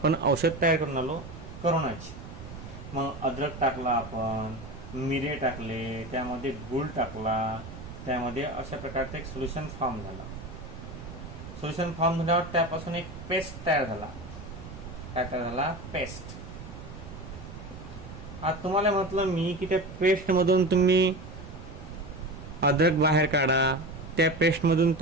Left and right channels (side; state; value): right; noise; rumble, 13 dB below the sound